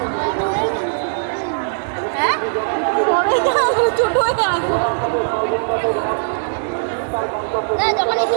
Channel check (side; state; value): left; silent; digital silence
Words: হ্যাঁ ছোট হয়ে আসবো। না যখন একটু